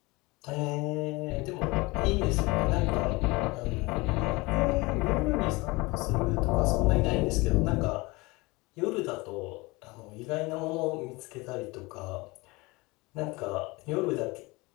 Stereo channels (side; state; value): right; quieter; 24.0 dB